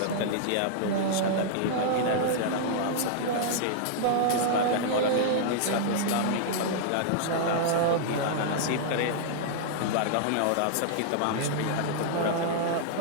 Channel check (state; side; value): different; both; correlation -0.01